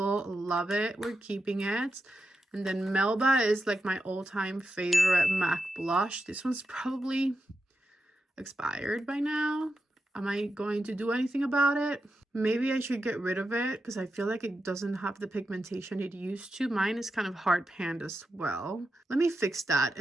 Love it. We're keeping it. And then Melba is like my all-time favorite MAC blush. This one's probably expired by now. Am I going to do anything about it? Maybe I should get rid of it because I feel like it doesn't have the pigmentation it used to. Mine is kind of hard panned as well. Let me fix that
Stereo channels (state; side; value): normal; both; correlation 0.88